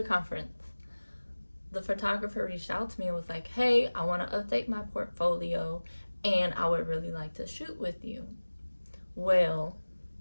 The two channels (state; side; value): inverted; both; correlation -1.00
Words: conference, the photographer reached out to me and was like, hey, I want to update my portfolio and I would really like to shoot with you. Well,